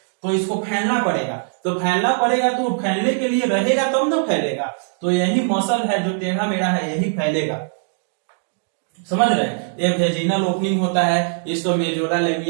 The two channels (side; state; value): left; silent; digital silence